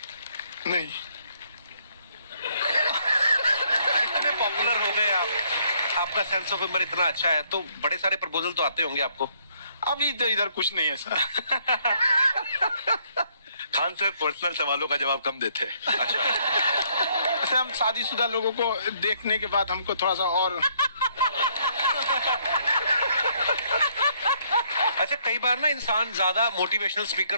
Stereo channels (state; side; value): inverted; both; correlation -0.68